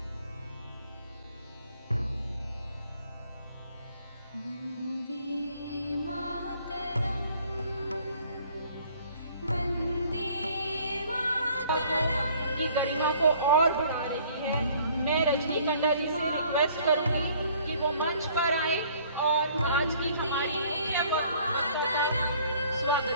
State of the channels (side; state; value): both; inverted; correlation -0.57